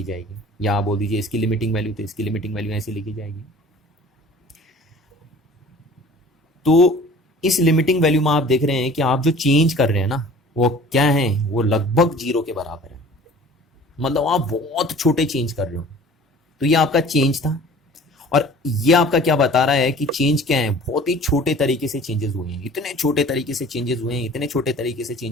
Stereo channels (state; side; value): normal; both; correlation 0.46